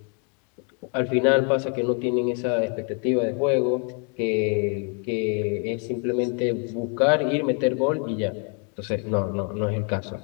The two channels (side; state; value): right; quieter; 39.2 dB